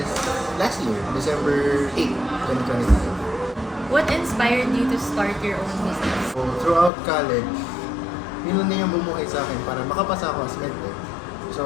last year, December 8, 2025. What inspired you to start your own business? So, throughout college, yun lang din yung bumuhay sa akin para makapasa ako as medtech.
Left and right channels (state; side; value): drops out; right; at 6.9 s